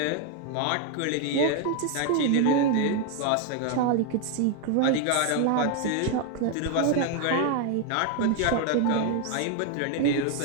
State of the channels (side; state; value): both; different; correlation 0.01